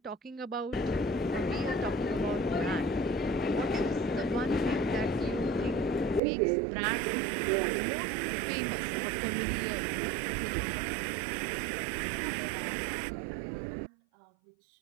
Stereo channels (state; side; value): drops out; left; at 6.2 s